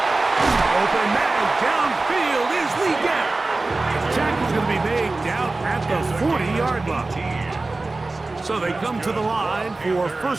Open man. Downfield is Lee Gap. The tackle's going to be made down at the 40-yard line. So they come to the line for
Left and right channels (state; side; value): quieter; left; 3.3 dB